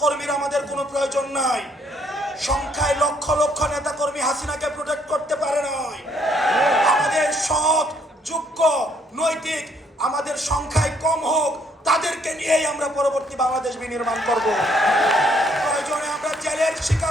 আমাদের কোনো প্রয়োজন নাই। সংখ্যায় লক্ষ লক্ষ নেতাকর্মী হাসিনাকে প্রোটেক্ট করতে পারে নাই। আমাদের সৎ, যোগ্য, নৈতিক আমাদের সংখ্যায় কম হোক, তাদেরকে নিয়েই আমরা পরবর্তী বাংলাদেশ বিনির্মাণ করব। প্রয়োজনে আমরা জেলের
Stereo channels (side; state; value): both; normal; correlation 0.68